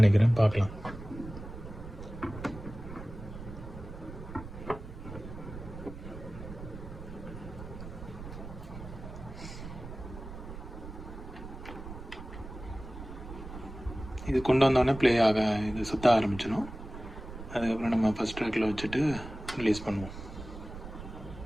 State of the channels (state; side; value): noise; right; rumble, 12 dB below the sound